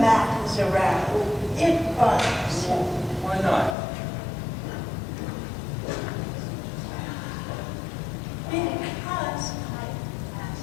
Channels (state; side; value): drops out; right; at 3.8 s